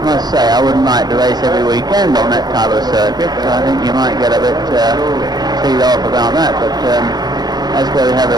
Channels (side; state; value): left; late; 0.20 ms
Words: must say I wouldn't like to race every weekend on that type of circuit. I think you might get a bit teed off about that, but that's where we have the